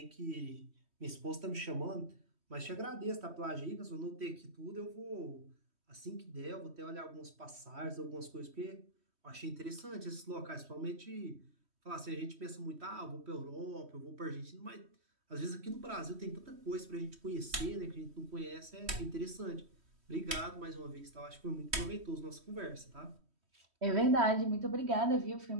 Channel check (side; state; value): left; late; 3.1 ms